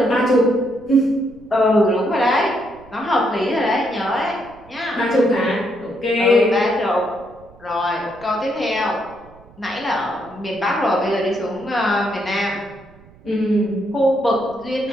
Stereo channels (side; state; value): right; noise; rumble, 25 dB below the sound